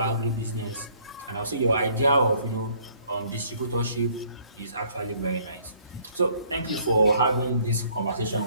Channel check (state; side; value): inverted; both; correlation -0.61